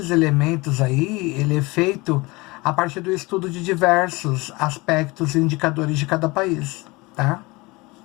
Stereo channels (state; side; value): quieter; right; 23.6 dB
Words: elementos aí, ele é feito a partir do estudo de diversos aspectos e indicadores de cada país, tá?